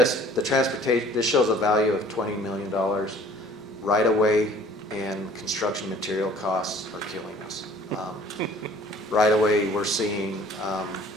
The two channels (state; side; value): normal; both; correlation 0.53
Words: transportation, this shows a value of $20 million. Right away and construction material costs are killing us. Right away, we're seeing